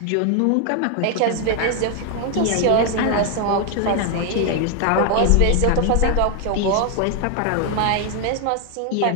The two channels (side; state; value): both; different; correlation 0.01